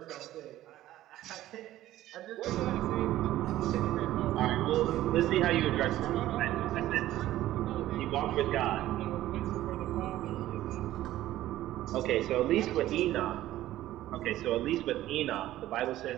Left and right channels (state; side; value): quieter; left; 14.4 dB